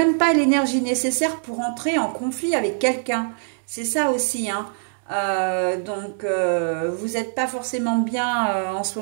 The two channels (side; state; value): left; silent; 61 dB below the other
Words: pas l'énergie nécessaire pour entrer en conflit avec quelqu'un, c'est ça aussi, hein. Donc vous n'êtes pas forcément bien en ce